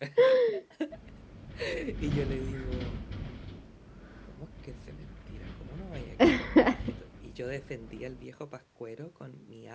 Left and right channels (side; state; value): both; identical; correlation 1.00